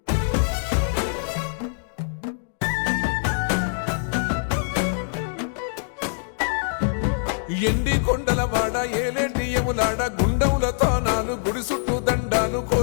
ఎండి కొండల వాడ ఏలేటి యములాడ గుండముల తానాలు గుడి చుట్టూ దండాలు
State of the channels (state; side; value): silent; right; digital silence